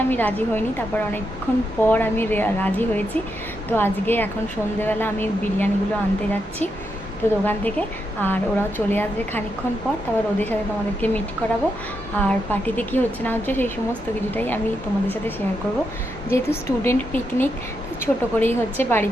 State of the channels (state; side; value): normal; both; correlation 0.83